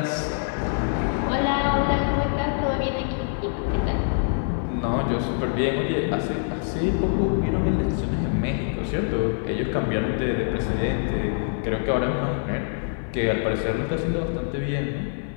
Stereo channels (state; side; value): silent; right; digital silence